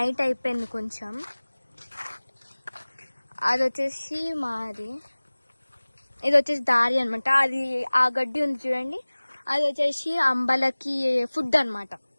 అయిపోయింది కొంచెం. అది వచ్చేసి మాది, ఇది వచ్చేసి దారి అనమాట. అది ఆ గడ్డి ఉంది చూడండి, అది వచ్చేసి అంబలకి ఫుడ్ అనమాట.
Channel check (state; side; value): inverted; both; correlation -1.00